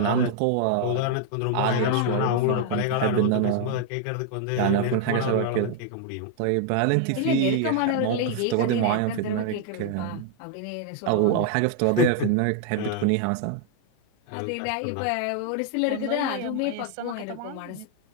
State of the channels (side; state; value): both; different; correlation 0.00